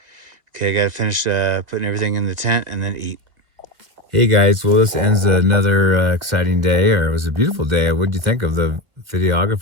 Okay, I gotta finish putting everything in the tent and then eat. Hey guys, well this ends another exciting day, or it was a beautiful day. What did you think of the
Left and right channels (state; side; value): late; left; 1.9 ms